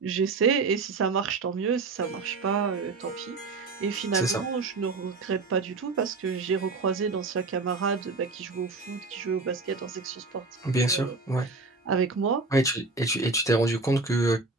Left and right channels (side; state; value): left; quieter; 3.9 dB